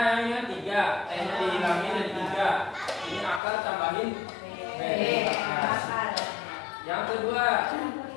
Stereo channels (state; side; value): drops out; right; at 3.4 s